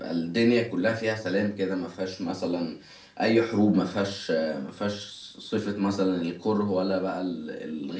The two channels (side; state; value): both; identical; correlation 1.00